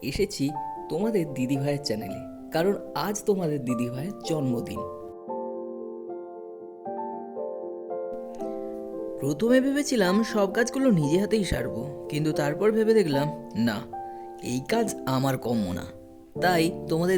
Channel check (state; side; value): identical; both; correlation 1.00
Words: এসেছি তোমাদের দিদিভাইয়ের চ্যানেলে, কারণ আজ তোমাদের দিদিভাইয়ের জন্মদিন। প্রথমে ভেবেছিলাম সব কাজগুলো নিজে হাতেই সারবো, কিন্তু তারপর ভেবে দেখলাম না, এই কাজ আমার কম্য না। তাই তোমাদের